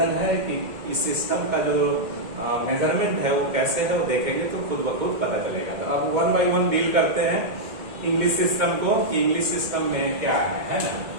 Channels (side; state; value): left; late; 2.2 ms